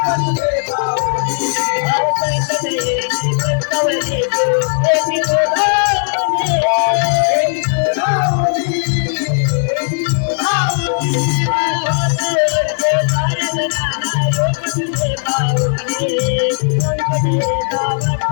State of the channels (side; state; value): right; silent; digital silence